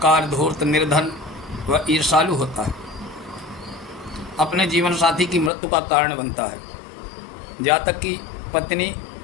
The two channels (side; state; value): right; drops out; at 5.5 s